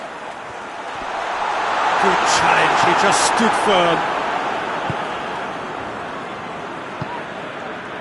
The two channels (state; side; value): identical; both; correlation 1.00